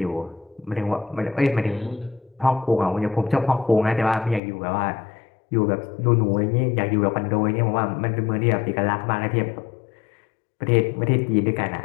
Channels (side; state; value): right; drops out; at 4.4 s